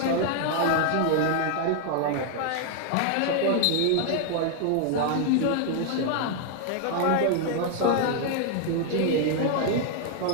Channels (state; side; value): different; both; correlation 0.00